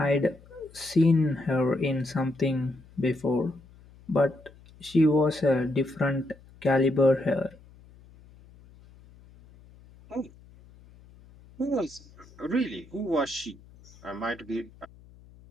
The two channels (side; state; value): left; noise; hum, 24 dB below the sound